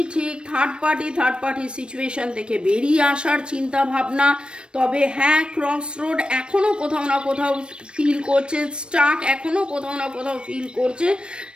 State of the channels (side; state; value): left; late; 0.056 ms